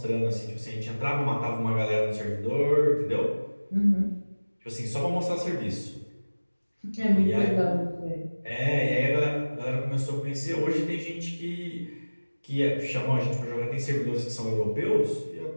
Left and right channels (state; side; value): inverted; both; correlation -1.00